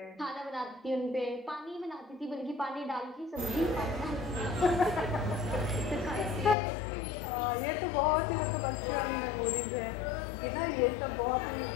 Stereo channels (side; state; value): right; drops out; at 6.6 s